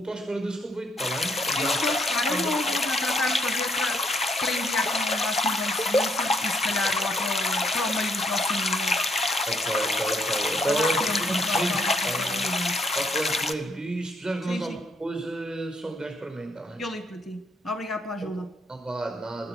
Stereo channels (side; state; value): both; normal; correlation 0.72